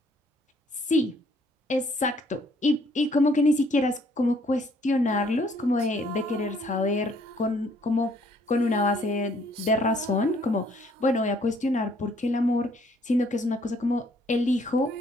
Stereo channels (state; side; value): normal; both; correlation 0.64